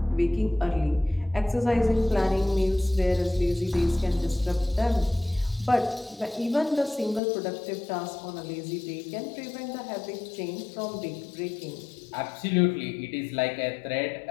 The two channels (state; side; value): drops out; right; at 7.2 s